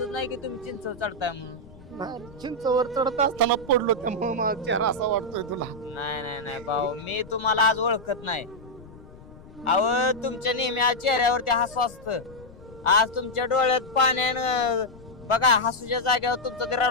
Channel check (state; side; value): noise; left; rumble, 20 dB below the sound